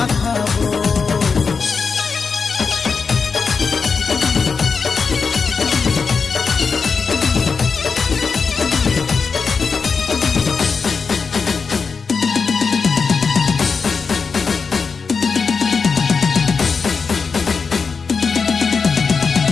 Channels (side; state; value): right; quieter; 5.2 dB